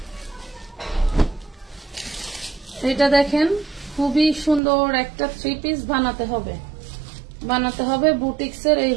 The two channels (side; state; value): left; drops out; at 4.6 s